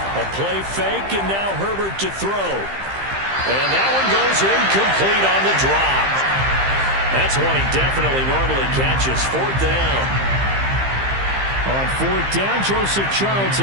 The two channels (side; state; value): left; late; 15 ms